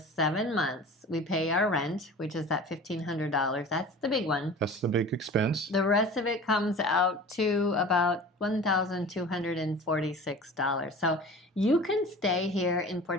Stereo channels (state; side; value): normal; both; correlation 0.39